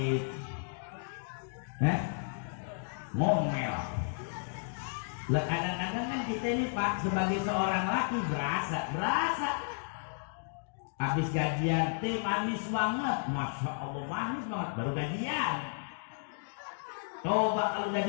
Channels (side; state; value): right; silent; digital silence